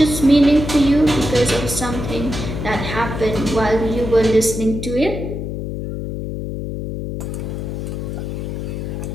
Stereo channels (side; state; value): left; noise; hum, 5 dB below the sound